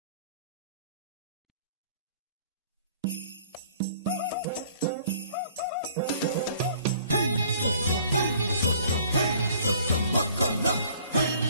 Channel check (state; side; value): inverted; both; correlation -0.55